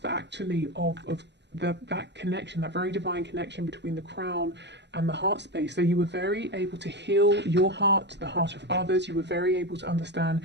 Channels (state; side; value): late; left; 0.51 ms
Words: actually of that connection, that very divine connection between the crown and the heart space. So you were very able to heal your heart, the heart of others. You were very able to